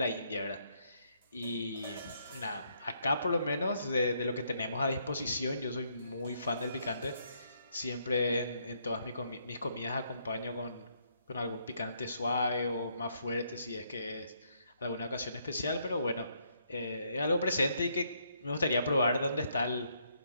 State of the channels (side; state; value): both; inverted; correlation -0.73